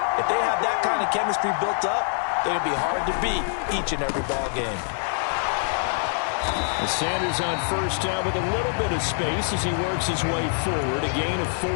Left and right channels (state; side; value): silent; right; digital silence